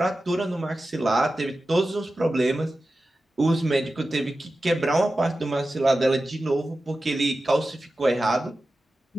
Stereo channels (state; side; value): normal; both; correlation 0.94